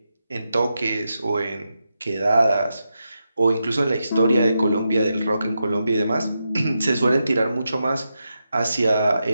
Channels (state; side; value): inverted; both; correlation -0.87